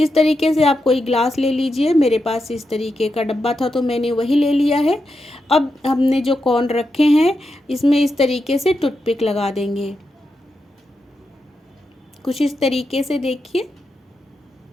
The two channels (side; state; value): both; normal; correlation 0.87